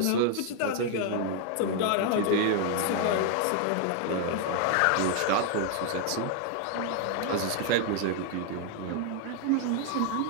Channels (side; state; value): both; different; correlation 0.00